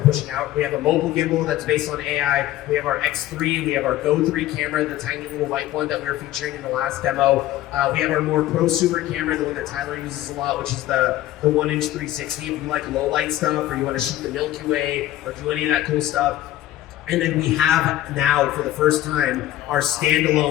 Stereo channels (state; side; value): quieter; right; 14.2 dB